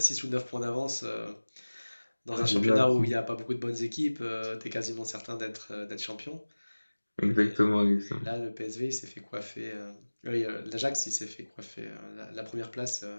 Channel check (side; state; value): both; inverted; correlation -1.00